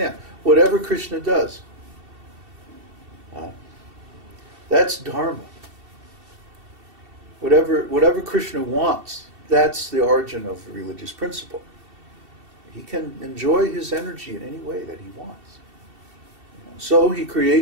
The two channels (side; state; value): left; late; 2.7 ms